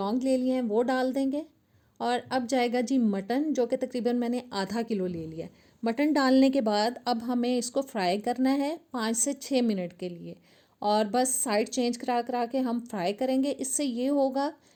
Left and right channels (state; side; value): identical; both; correlation 1.00